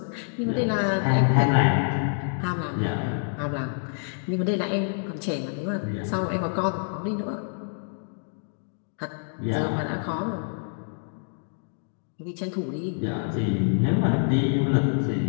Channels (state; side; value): silent; right; 60 dB below the other